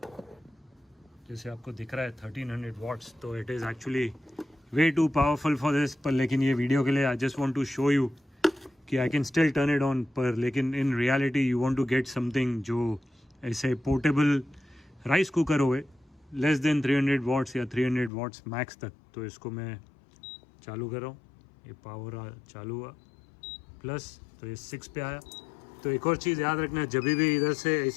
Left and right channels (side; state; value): right; drops out; at 18.1 s